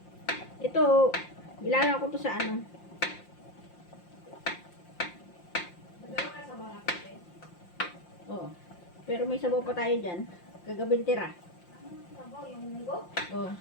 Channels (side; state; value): right; late; 5.7 ms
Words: Ito, ilalagay ko to sa ano. Oo. Pero may sabaw pa tayo dyan. Kagabing tira. Sabaw, yung munggo? Oo.